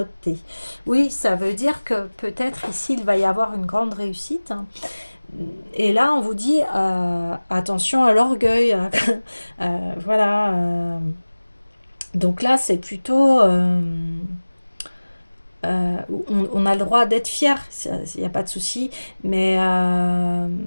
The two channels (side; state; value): both; inverted; correlation -1.00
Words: Oui, ça veut dire que peut-être ici il va y avoir une grande réussite, hein. Et là, on vous dit attention à l'orgueil. Voilà. Donc là, c'est plutôt. On a le droit d'être fier, il n'y a pas de souci. Mais